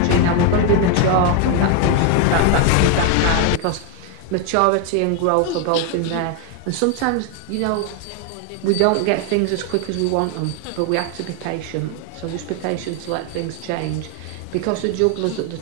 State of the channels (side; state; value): both; different; correlation 0.01